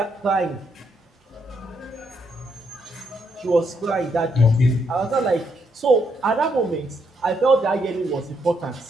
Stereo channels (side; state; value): both; normal; correlation 0.76